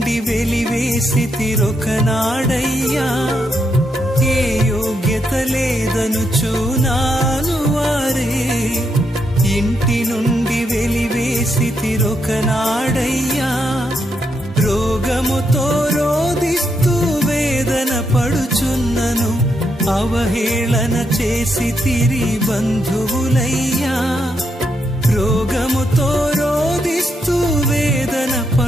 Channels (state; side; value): normal; both; correlation 0.80